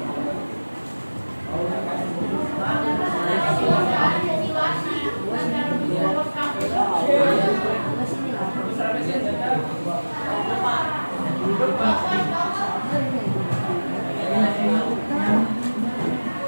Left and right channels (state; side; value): inverted; both; correlation -1.00